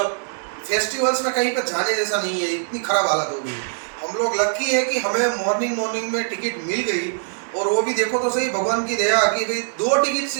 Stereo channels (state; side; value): silent; left; digital silence